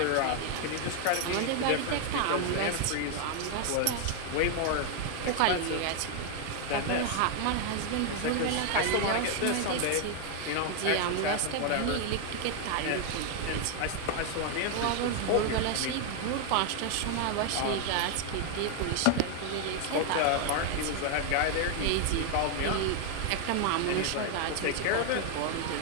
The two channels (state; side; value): different; both; correlation 0.00